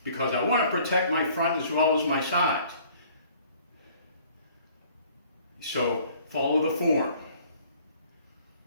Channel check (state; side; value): inverted; both; correlation -0.55